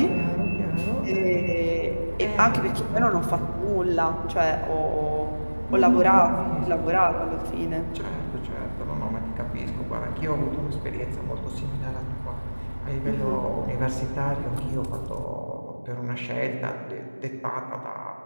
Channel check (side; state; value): both; inverted; correlation -1.00